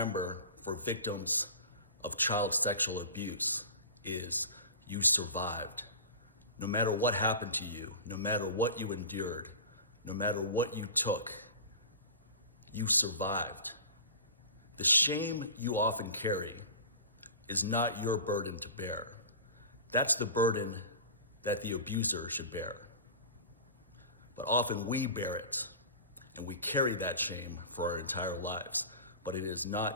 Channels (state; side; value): inverted; both; correlation -0.34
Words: for victims of child sexual abuse is you survived. No matter what happened to you, no matter what you endured, no matter what you took, you survived. The shame you often carry is not your burden to bear. That's the burden that the abuser should bear. But often we bear it, and we carry that shame for our entire lives, but it is